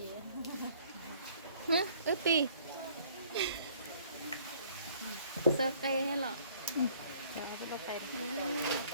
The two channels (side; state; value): both; inverted; correlation -0.58